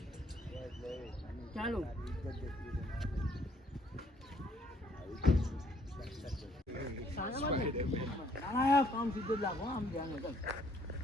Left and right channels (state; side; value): normal; both; correlation 0.65